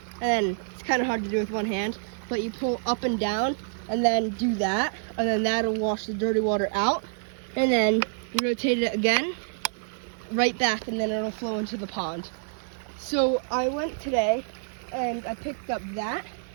and then it's kind of hard to do with one hand, but you pull up and down and then do that, and then that'll wash the dirty water out, and then you rotate it again, right back, and then it'll flow into the pond. So I went today and I picked up that,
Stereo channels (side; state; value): left; silent; 60 dB below the other